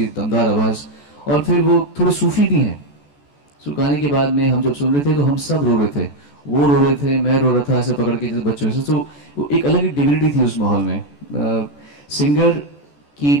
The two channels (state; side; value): late; right; 14 ms